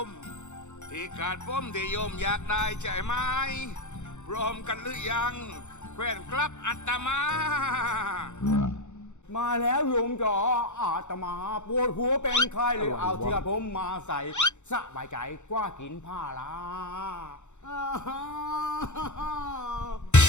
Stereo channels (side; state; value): right; late; 0.84 ms